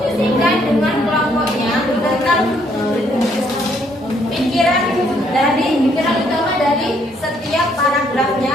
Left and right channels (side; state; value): both; normal; correlation 0.69